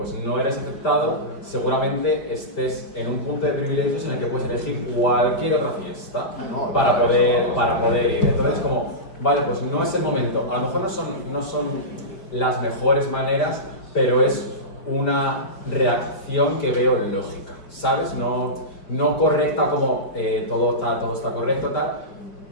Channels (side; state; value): right; late; 5.2 ms